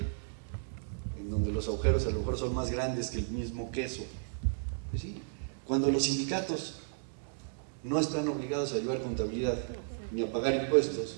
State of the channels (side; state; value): left; silent; digital silence